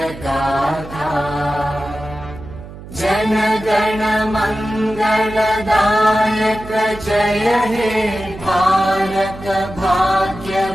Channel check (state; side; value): noise; right; hum, 15 dB below the sound